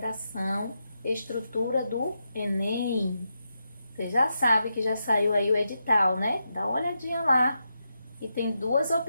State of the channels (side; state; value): both; inverted; correlation -0.86